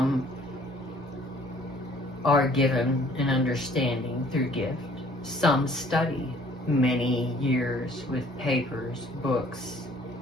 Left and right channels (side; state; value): both; normal; correlation 0.57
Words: are given an understanding through gift. Some study many years with papers, books,